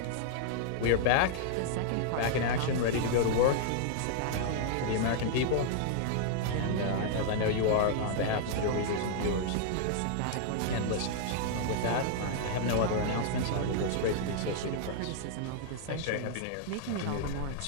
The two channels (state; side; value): different; both; correlation -0.01